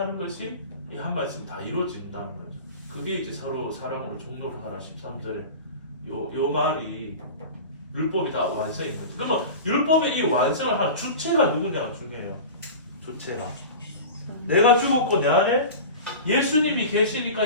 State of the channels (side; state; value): both; inverted; correlation -0.33